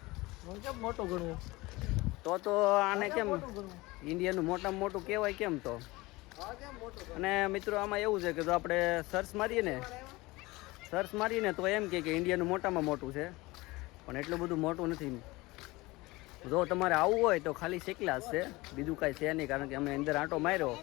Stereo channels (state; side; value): quieter; right; 21.4 dB